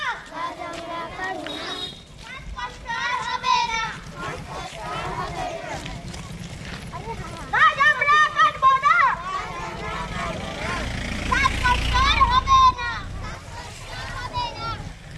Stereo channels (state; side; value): identical; both; correlation 1.00